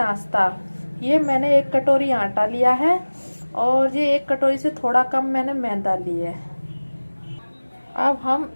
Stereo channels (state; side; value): inverted; both; correlation -1.00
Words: ये मैंने 1 कटोरी आटा लिया है और ये 1 कटोरी से थोड़ा कम मैंने मैदा लिया है। अब हम